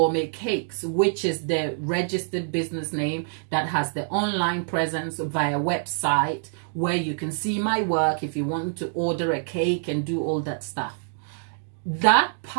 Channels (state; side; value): silent; left; digital silence